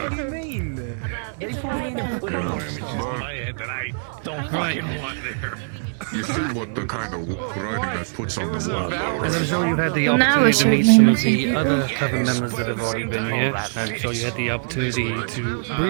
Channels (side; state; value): left; silent; digital silence